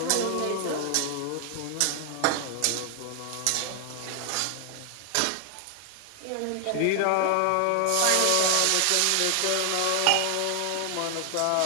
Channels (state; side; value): different; both; correlation 0.00